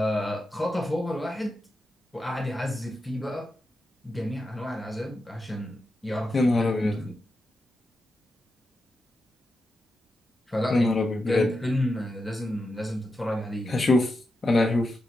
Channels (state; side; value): normal; both; correlation 0.88